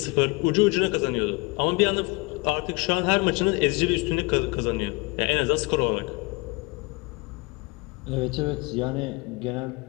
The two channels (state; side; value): quieter; right; 26.5 dB